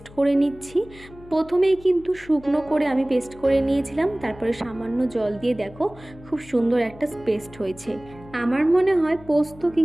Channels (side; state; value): left; noise; hum, 20 dB below the sound